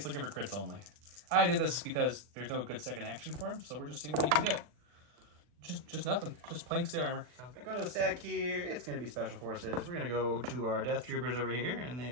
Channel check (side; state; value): left; late; 40 ms